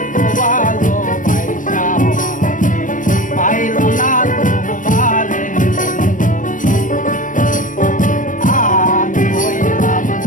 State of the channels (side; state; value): right; late; 0.38 ms